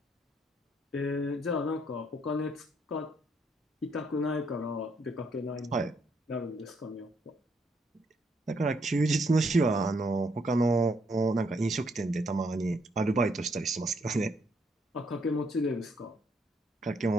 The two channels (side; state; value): both; normal; correlation 0.72